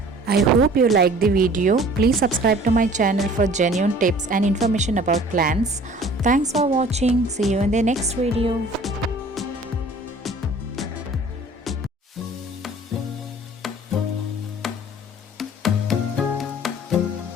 I hope you liked the video. Please subscribe to my channel for genuine tips and information about plants. Thanks for watching. See you in the next video.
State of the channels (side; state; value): both; normal; correlation 0.49